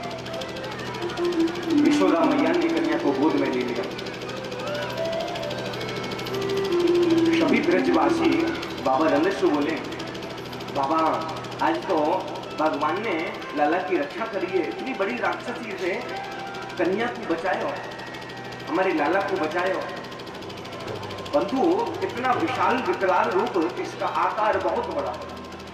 यशोदा मैया ने कन्या को गोद में ले लिया। सभी ब्रजवासी बाबा नंद से बोले, बाबा आज तो भगवान ने लाला की रक्षा करी है, इतनी बड़ी राक्षसी से कन्या को बचायो, हमारे लाला को बचायो। बंधु इतना विशाल विकराल रूप, इसका आकार बहुत बड़ा।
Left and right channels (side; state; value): both; identical; correlation 1.00